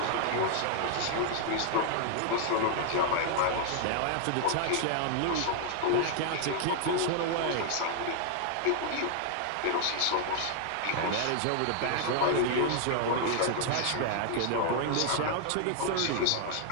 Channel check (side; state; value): both; different; correlation 0.00